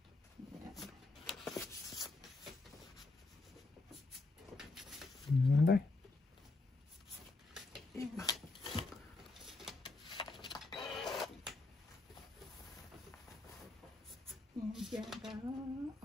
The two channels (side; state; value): right; quieter; 3.3 dB